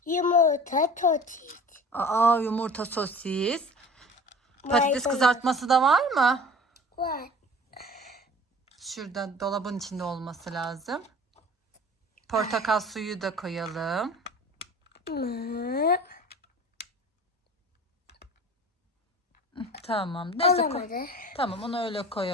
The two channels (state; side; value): normal; both; correlation 0.42